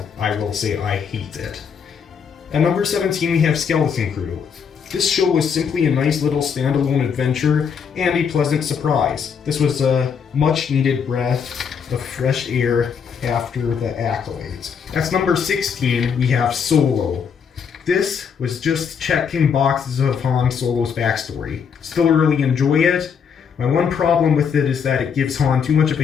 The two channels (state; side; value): quieter; right; 6.8 dB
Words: I will say I hate it. At number 17 we have Skeleton Crew. This show was simply a nice little standalone adventure and a pleasant surprise. This was a much needed breath of fresh air after the accolades. At number 16 we have Solo. This was just checking boxes of Han Solo's backstory. Still really enjoy it. My one problem with it is that it gives Han too much of